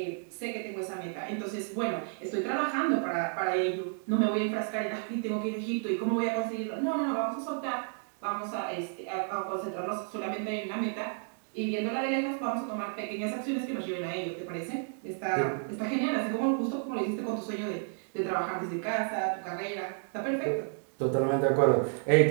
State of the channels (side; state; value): left; silent; 57 dB below the other